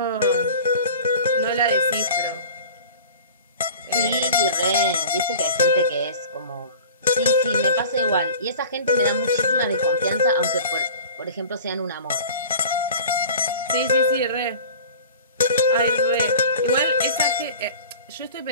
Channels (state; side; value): inverted; both; correlation -0.40